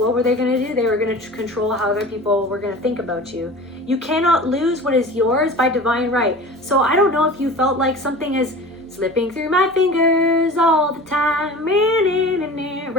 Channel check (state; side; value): normal; both; correlation 0.38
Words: were they going to do? They were going to control how other people were going to think about you. You cannot lose what is yours by divine right. So I don't know if you felt like something is slipping through my fingers all the time,